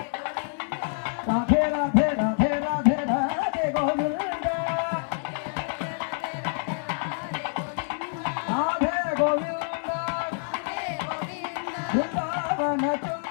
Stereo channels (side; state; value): right; silent; digital silence